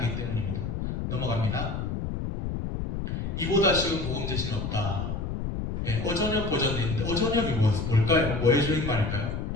넘어갑니다. 이보다 쉬운 복음 제시는 없다. 어전역 버전이 있는데 어전역이 뭘까요? 뭐의 줄임말일까요?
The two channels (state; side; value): noise; left; rumble, 3 dB below the sound